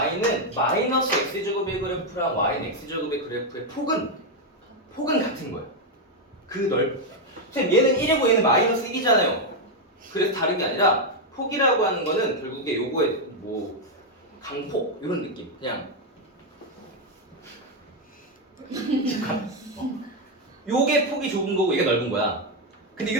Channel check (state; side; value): normal; both; correlation 0.03